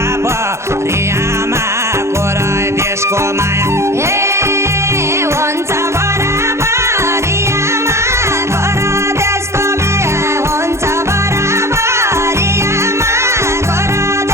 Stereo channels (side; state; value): left; late; 0.13 ms